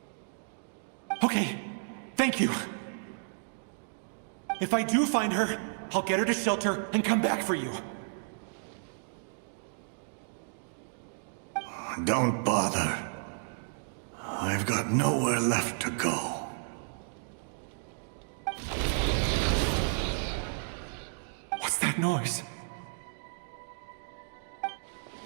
Okay, thank you. If I do find her, I'll get her to shelter and come back for you. Don't bother. I've got nowhere left to go. What's that noise?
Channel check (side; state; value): left; silent; digital silence